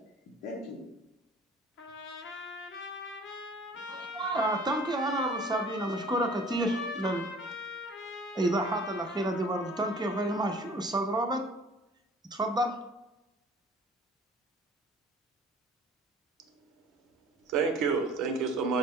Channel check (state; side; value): normal; both; correlation 0.49